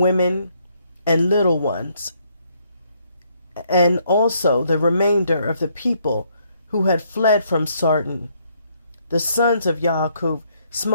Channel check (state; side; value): inverted; both; correlation -0.70